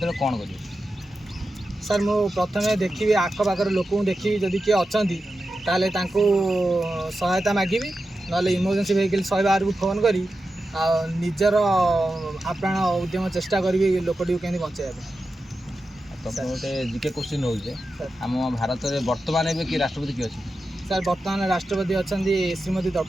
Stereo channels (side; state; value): both; normal; correlation 0.91